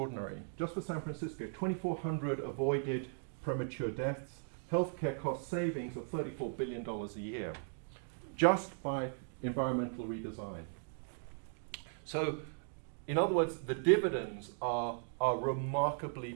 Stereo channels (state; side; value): silent; left; digital silence